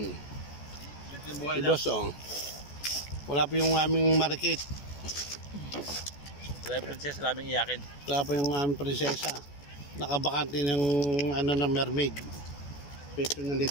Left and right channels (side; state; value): right; late; 14 ms